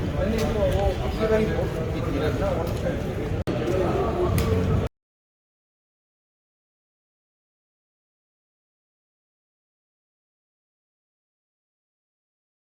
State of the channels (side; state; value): both; identical; correlation 1.00